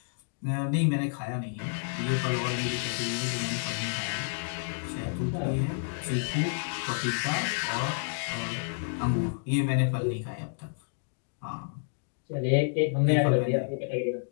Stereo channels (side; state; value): right; silent; digital silence